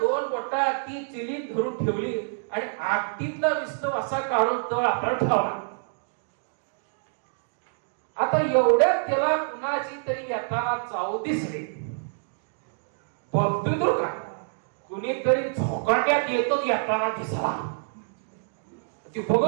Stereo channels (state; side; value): silent; left; digital silence